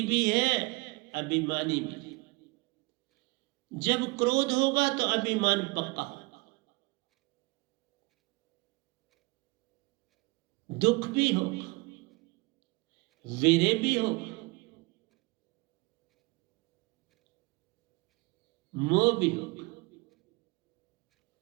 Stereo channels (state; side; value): quieter; left; 25.6 dB